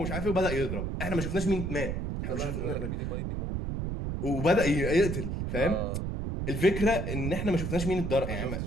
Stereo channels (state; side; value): noise; right; rumble, 2 dB below the sound